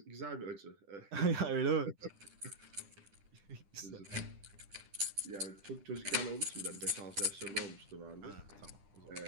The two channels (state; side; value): late; left; 10 ms